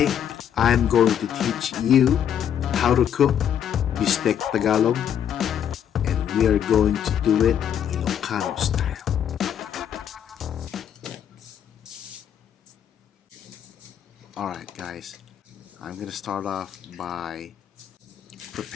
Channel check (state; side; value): quieter; right; 9.2 dB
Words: I'm going to teach you how to cook Bistek Tagalog, and we are going to do it Ilocano style. Alright guys, I'm gonna start off by